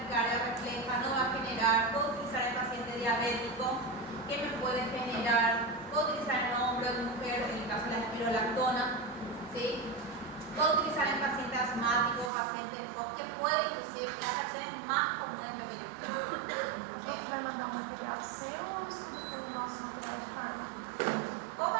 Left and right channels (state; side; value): drops out; left; at 12.3 s